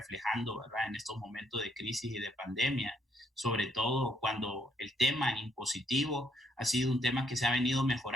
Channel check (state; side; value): normal; both; correlation 0.72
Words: ¿verdad?, en estos momentos de crisis y de pandemia, sobre todo cuando el tema impositivo ha sido un tema que se ha venido